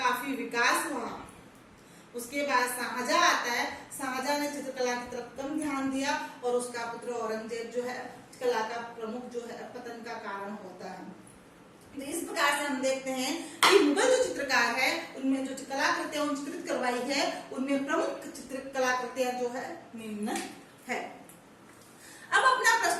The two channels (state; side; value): identical; both; correlation 1.00